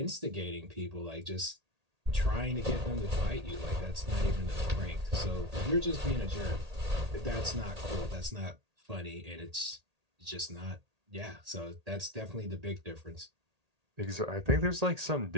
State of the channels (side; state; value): left; late; 1.8 ms